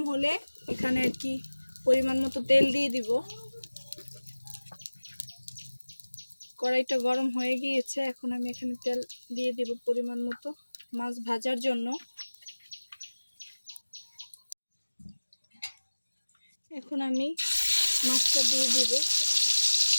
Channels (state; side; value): inverted; both; correlation -1.00